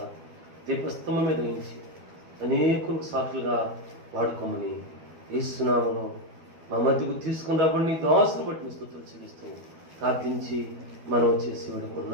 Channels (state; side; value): late; left; 12 ms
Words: దీపస్తంభం మీద ఉంచి అనేకులకు సాక్షులుగా వాడుకోమని యేసునామములో మా మధ్యకు తీసుకుని రాబడి నీ దాసును బట్టి స్తుతులు చెల్లిస్తూ ప్రార్థించి మనం చేసి